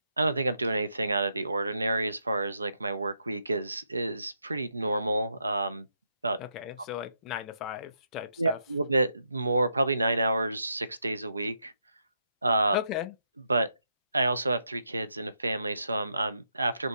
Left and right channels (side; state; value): both; inverted; correlation -0.81